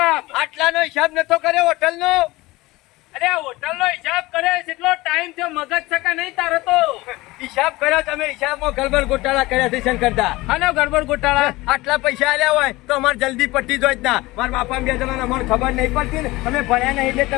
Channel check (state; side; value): quieter; right; 20.4 dB